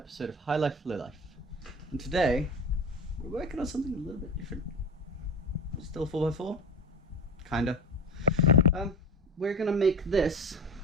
of High Life Low Life. And today we're working on something a little bit different. Still 4x4? Kinda. We're gonna make this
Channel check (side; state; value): both; normal; correlation 0.29